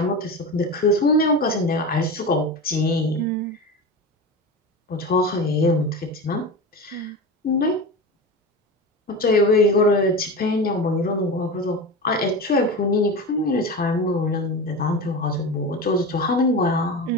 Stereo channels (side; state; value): both; normal; correlation 0.26